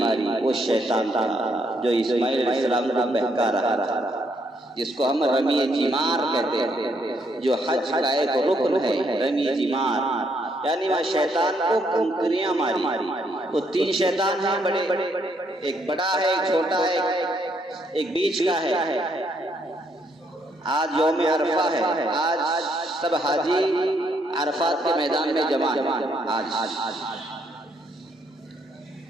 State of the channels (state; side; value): normal; both; correlation 0.73